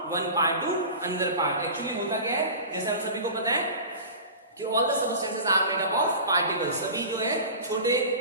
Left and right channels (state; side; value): inverted; both; correlation -0.34